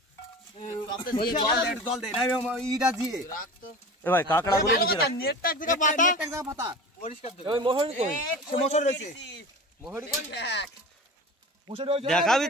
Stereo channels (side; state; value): both; normal; correlation 0.34